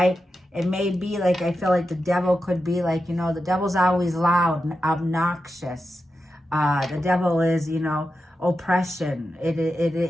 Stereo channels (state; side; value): normal; both; correlation 0.89